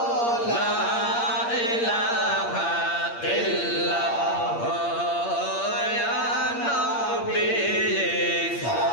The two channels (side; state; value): right; late; 8.6 ms